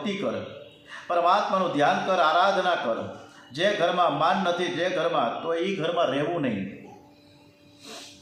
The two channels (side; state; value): both; identical; correlation 1.00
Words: કર, પરમાત્માનું ધ્યાન કર, આરાધના કર. જે ઘરમાં માન નથી, જે ઘરમાં, તો એ ઘરમાં રહેવું નહીં.